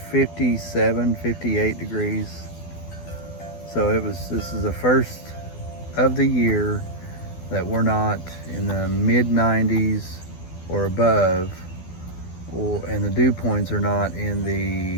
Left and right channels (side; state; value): right; late; 12 ms